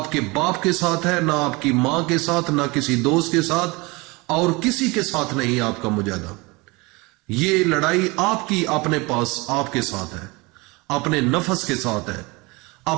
बाप के साथ है, ना आपकी मां के साथ, ना किसी दोस्त के साथ, और किसी के साथ नहीं आपका मुजाहिदा। ये लड़ाई आपकी अपने पास, आपके साथ है, अपने नफ्स के साथ है,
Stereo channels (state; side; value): quieter; left; 25.2 dB